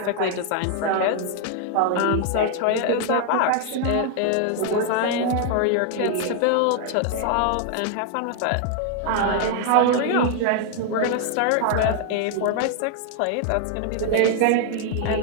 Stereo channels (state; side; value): different; both; correlation 0.00